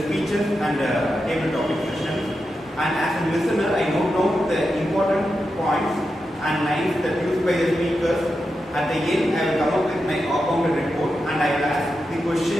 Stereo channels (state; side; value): normal; both; correlation 0.88